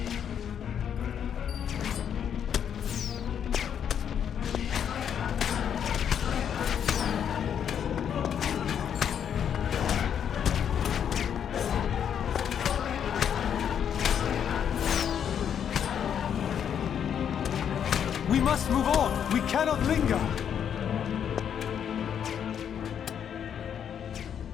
We must move on! We cannot linger!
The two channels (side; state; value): right; quieter; 8.5 dB